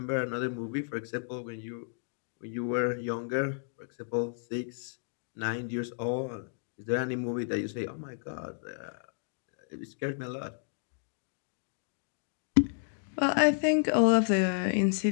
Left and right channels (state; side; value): silent; right; digital silence